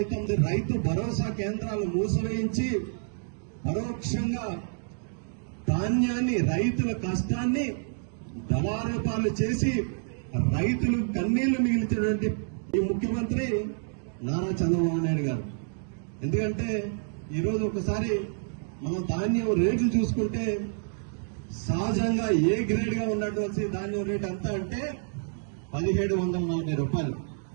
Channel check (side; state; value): left; silent; digital silence